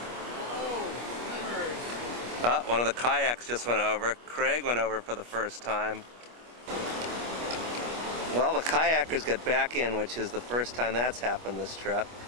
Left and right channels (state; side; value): late; left; 25 ms